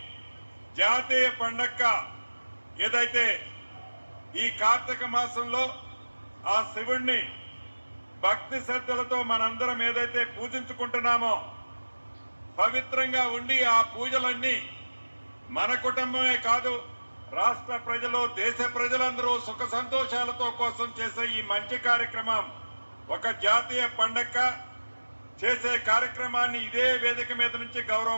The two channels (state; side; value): inverted; both; correlation -1.00